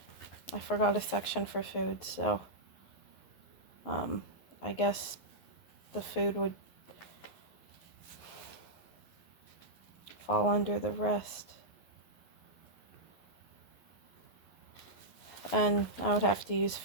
I forgot a section for food, so I guess the food would fall under the rest. And I would have to use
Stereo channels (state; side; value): late; right; 11 ms